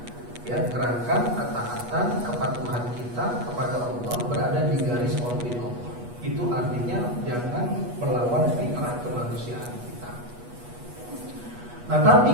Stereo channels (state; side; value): late; left; 8.3 ms